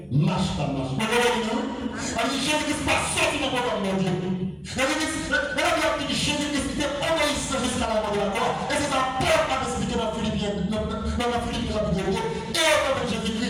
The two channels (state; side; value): identical; both; correlation 1.00